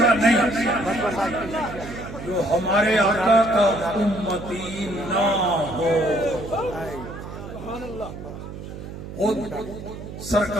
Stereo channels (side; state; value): right; noise; hum, 11 dB below the sound